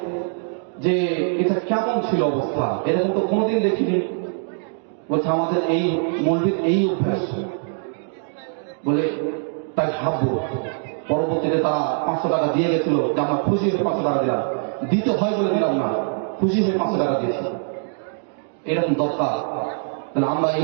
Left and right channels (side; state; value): left; silent; 64 dB below the other